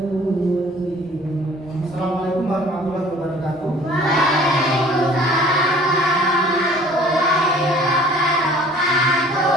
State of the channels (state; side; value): normal; both; correlation 0.51